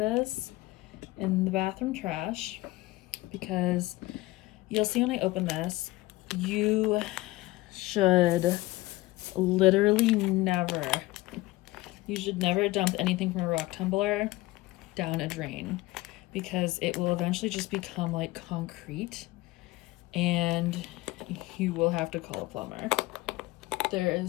in the bathroom trash because you'll see when I open this, you should literally never dump anything from a rock tumbler down a drain because it will eventually just become like concrete and you will have to call a plumber. There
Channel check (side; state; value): right; quieter; 19.3 dB